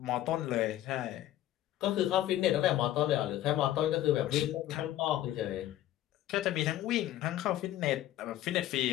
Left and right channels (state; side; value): quieter; right; 13.5 dB